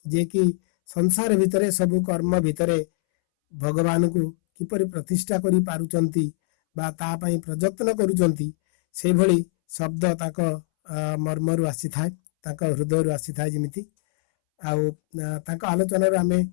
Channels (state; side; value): silent; right; 63 dB below the other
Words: ଯିଏକି ସଂସାର ଭିତରେ ସବୁ କର୍ମ ଭିତରେ ଭଗବାନଙ୍କୁ କିପରି ପ୍ରତିଷ୍ଠା କରି ପାରୁଛନ୍ତି ବା ତା ପାଇଁ ପ୍ରଯତ୍ନ କରୁଛନ୍ତି, ସେଇଭଳି ଶବ୍ଦ ତାଙ୍କ ମର୍ମରୁ ଆସିଥାଏ, ତାଙ୍କ ହୃଦୟରୁ ଆସିଥାଏ ଯେମିତି। ଆଉ ତାଙ୍କ ଆଲୋଚନାରୁ ଆମେ